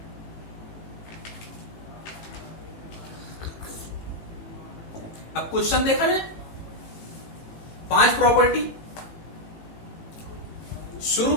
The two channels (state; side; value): late; right; 18 ms